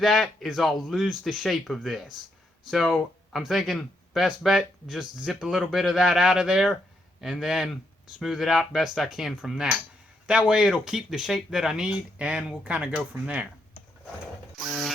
is I'll lose the shape of this. So I'm thinking best bet, just zip a little bit of that out of there and then smooth it out best I can from that. That way it'll keep the shape that I need and we'll kind of go from there.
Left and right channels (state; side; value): normal; both; correlation 0.78